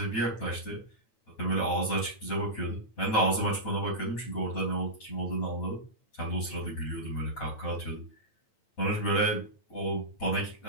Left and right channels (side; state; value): right; late; 9.0 ms